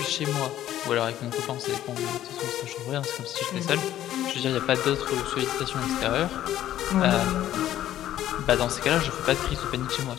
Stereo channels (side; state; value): right; quieter; 12.5 dB